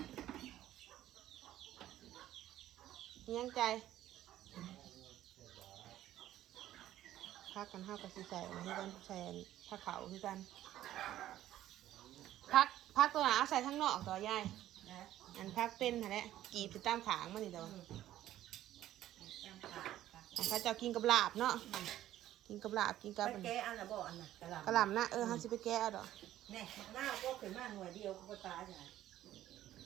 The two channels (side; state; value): left; quieter; 13.2 dB